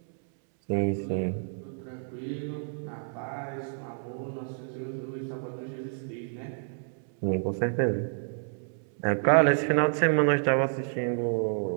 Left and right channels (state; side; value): silent; left; 58 dB below the other